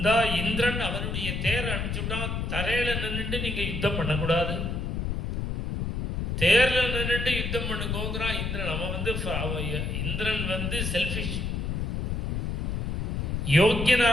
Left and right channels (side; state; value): left; noise; rumble, 1 dB below the sound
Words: இந்திரன் அவனுடைய தேர் அனுப்பிச்சுட்டான். தரையில நின்றுட்டு நீங்க யுத்தம் பண்ணக்கூடாது, தேர்ல நின்றுட்டு யுத்தம் பண்ணுங்கிறான் இந்திரன். இந்திரன் வந்து செல்ஃபிஷ். யோக்கியனா